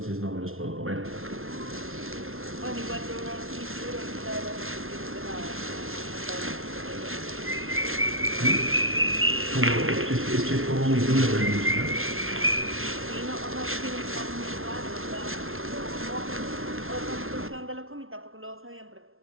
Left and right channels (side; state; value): left; late; 0.61 ms